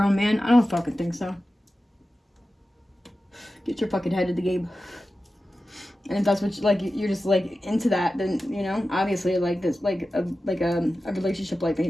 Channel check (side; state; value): both; normal; correlation 0.94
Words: man, I don't fucking think so. Get your fucking head in the game. And if that's what you're just like into that, then, you know, obviously, like, this, like a relationship like